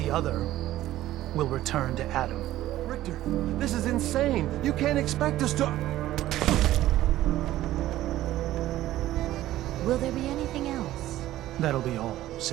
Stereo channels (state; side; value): quieter; left; 14.5 dB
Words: other will return to Adam. Richter, this is insane. You can't expect us to— Will there be anything else? That'll be all,